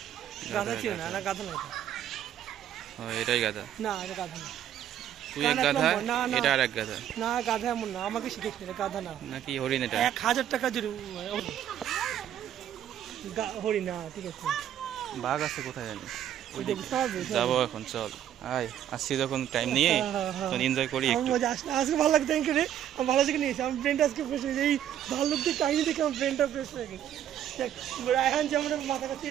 গাধা ছিল না, না গাধা না, ও এটাই গাধা। না এটা গাধা না। তুই এক গাধা, এটা আর এক গাধা। না গাধা এমন না, আমাকে শিখেছিল, এটা গাধা না। নাকি হরিণ? এটা 1000 টাকা জুড়ে হরিণ না, ঠিক আছে। বাঘ আছে কোথায় জানি, যাবো এখন, চল আয়। আসছি যখন টাইম নিয়ে তখন এনজয় করি একটু। মজা আসলে আজকে ভালো লাগছে, থ্যাংক ইউ রে। আমি ভালো থেকে নিয়েছি, আমার ব্রেনটা আজকে ফ্রেশ হয়েছে, এই ভাল্লুকদের কাহিনী দেখে আমার ব্রেনটা ফ্রেশ হয়ে গেছে। রায়হান যে আমার মাথা কাছে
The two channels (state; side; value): quieter; left; 10.7 dB